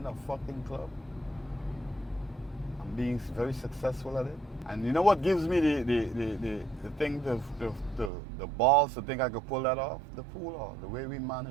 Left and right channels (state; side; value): drops out; left; at 8.1 s